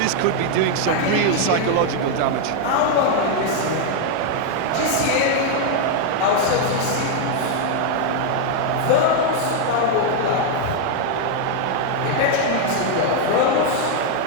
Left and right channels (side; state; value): both; different; correlation 0.00